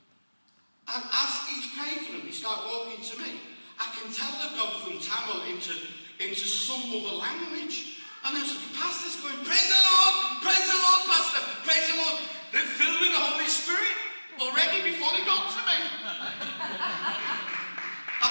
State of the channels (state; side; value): inverted; both; correlation -1.00